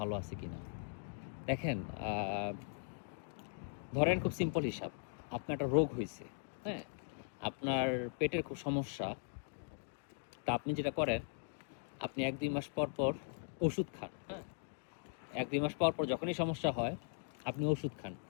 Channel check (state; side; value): silent; right; digital silence